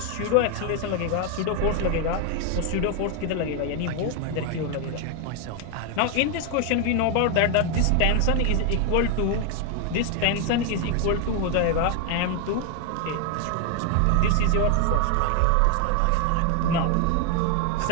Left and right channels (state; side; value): different; both; correlation 0.01